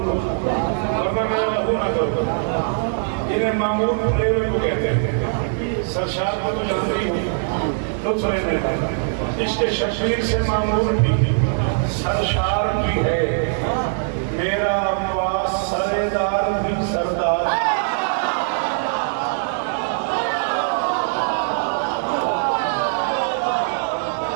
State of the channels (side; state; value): left; silent; 65 dB below the other